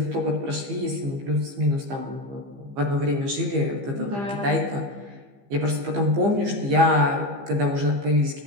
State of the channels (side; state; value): left; late; 15 ms